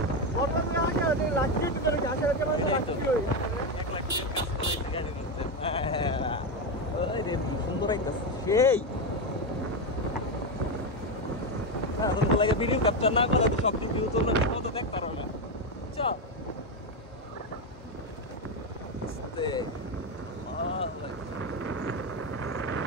সুন্দর সেই লাগে ভিডিও ক্যাপচার না করলে সব ভিডিও চললে তো দেখতে পারো না বুঝছো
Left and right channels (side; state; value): both; normal; correlation 0.10